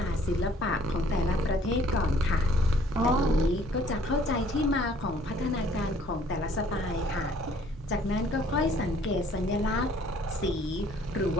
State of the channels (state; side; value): normal; both; correlation 0.59